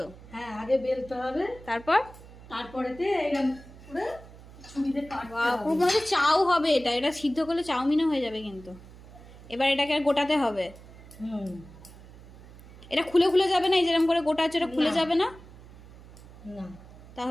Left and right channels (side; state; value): right; noise; hum, 19 dB below the sound